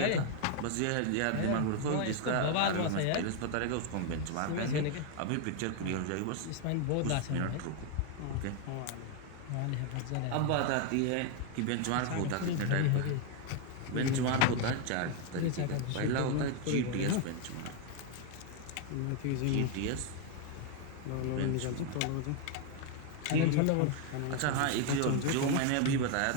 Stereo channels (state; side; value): different; both; correlation 0.01